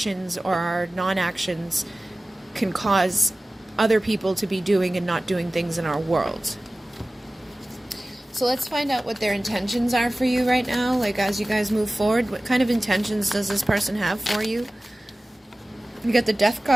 or our non-actions can cause other people to be doing and not doing things in our world. So let's find out what their intentions are for you right now. Like, as you guys move forward, what kind of intentions does this person have for you? You got the Death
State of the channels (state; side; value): normal; both; correlation 0.97